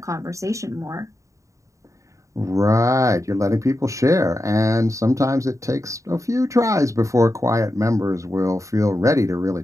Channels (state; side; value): late; left; 0.15 ms